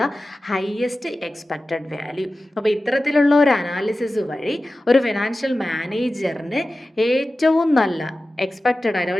the highest expected value. അപ്പോൾ ഇത്തരത്തിലുള്ള ഒരു അനാലിസിസ് വഴി ഒരു ഫിനാൻഷ്യൽ മാനേജറിന് ഏറ്റവും നല്ല എക്സ്പെക്റ്റഡ് ആയിട്ട്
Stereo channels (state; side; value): normal; both; correlation 0.95